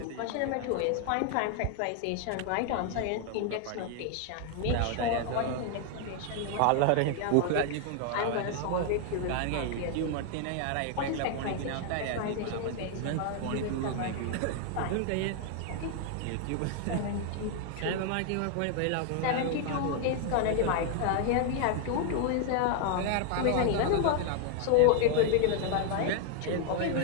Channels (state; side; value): different; both; correlation 0.00